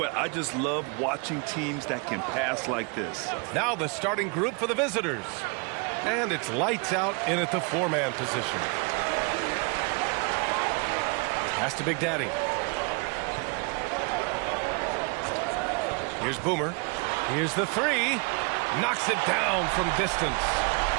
I just love watching teams that can pass like this. Now the starting group for the visitors. And it's lights out in at the four-man position. Pass to Big Daddy. Here's Boomer. Here's the three. Knocks it down from distance.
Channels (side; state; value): left; quieter; 32.8 dB